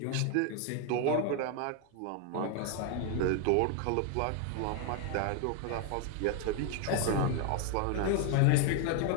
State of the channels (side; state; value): both; different; correlation 0.01